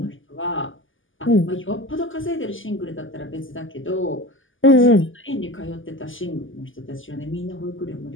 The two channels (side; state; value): right; late; 0.58 ms